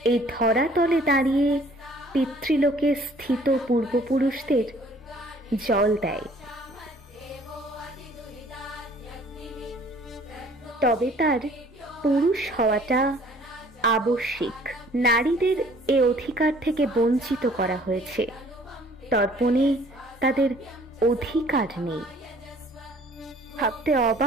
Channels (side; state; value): both; normal; correlation 0.55